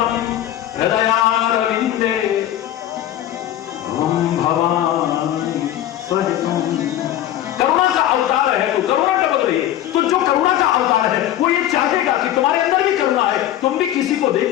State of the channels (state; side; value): quieter; right; 12.4 dB